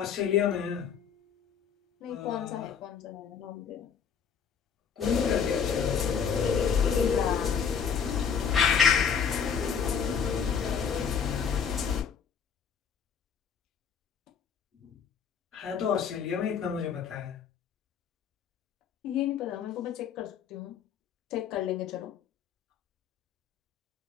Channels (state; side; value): quieter; right; 7.1 dB